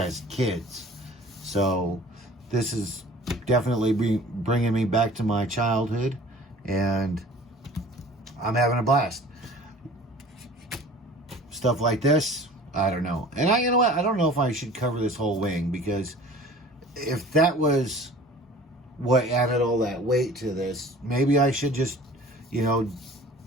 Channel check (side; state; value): both; normal; correlation 0.45